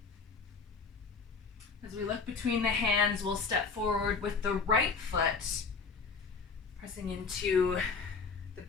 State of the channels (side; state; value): right; quieter; 4.9 dB